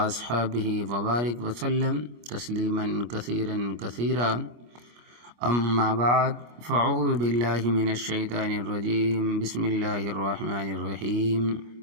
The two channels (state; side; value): late; left; 25 ms